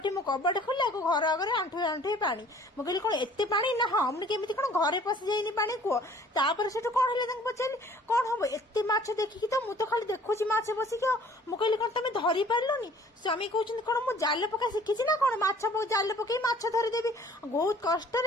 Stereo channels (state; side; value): normal; both; correlation 0.53